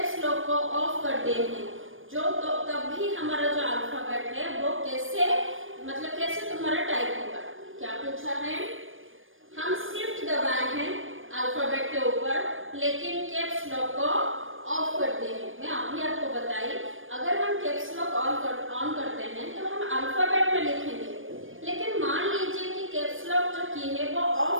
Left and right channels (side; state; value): left; late; 0.59 ms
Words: लॉक को ऑफ कर दिए हैं, जो तो तब भी हमारा जो अल्फाबेट है वो कैसे मतलब कैसे तुम्हारा टाइप होगा। क्या पूछा है, हम शिफ्ट दबाए हैं अल्फाबेट के ऊपर लेकिन कैप्स लॉक को ऑफ करते हैं। मैं अभी आपको बताई, अगर हम कैप्स लॉक ऑन करते हैं तो हम अल्फाबेट में लिखेंगे, लेकिन मान लीजिए कि कैप्स लॉक जो की है वो